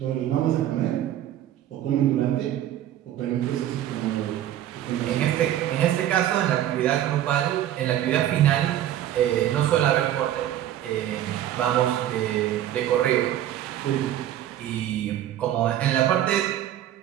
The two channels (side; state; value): left; quieter; 12.1 dB